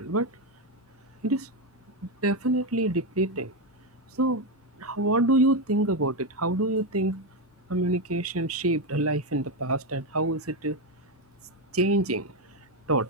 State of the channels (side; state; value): both; normal; correlation 0.08